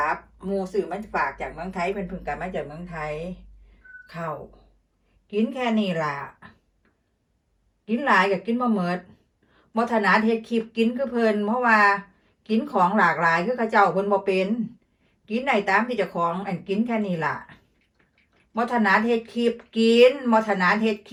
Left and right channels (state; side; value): identical; both; correlation 1.00